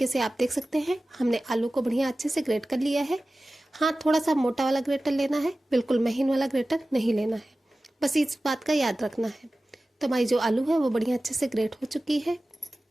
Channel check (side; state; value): both; normal; correlation 0.96